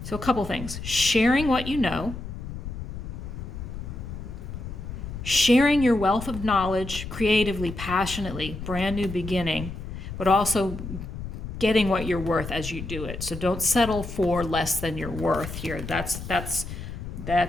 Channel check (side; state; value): left; noise; rumble, 8 dB below the sound